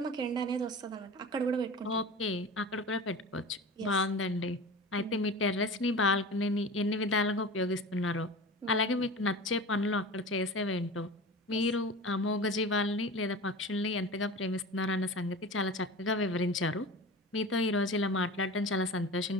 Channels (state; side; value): normal; both; correlation 0.34